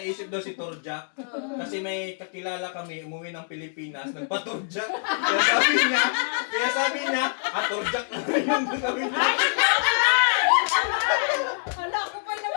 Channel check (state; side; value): silent; right; digital silence